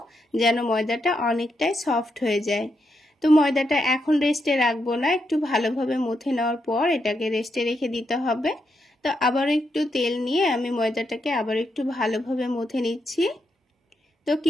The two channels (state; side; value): normal; both; correlation 0.82